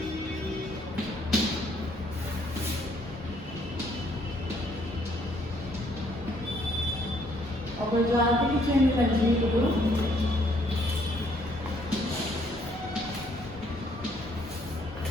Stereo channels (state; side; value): normal; both; correlation 0.66